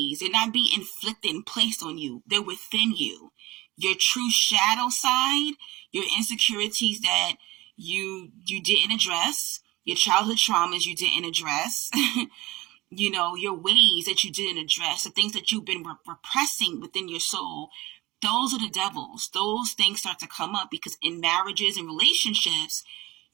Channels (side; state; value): left; quieter; 19.8 dB